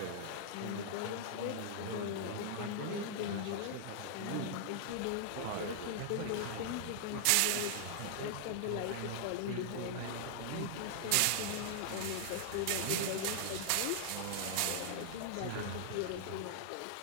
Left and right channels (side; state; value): both; different; correlation 0.00